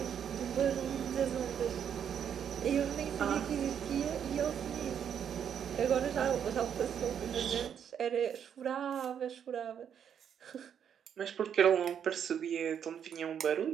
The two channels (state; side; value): quieter; left; 8.4 dB